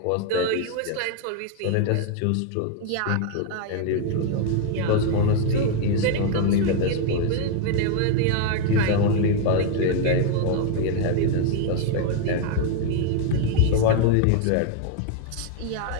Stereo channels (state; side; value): different; both; correlation 0.01